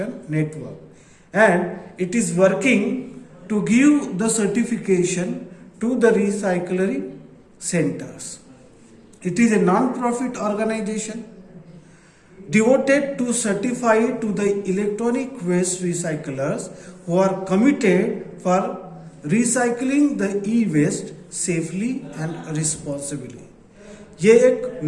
Network and it is working to give the certification to the recycling centres. It is a non profit organisation devoted to certify to the electronic waste recyclers who are committed for recycling the e-waste safely and responsibly. ये एक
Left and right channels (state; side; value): identical; both; correlation 1.00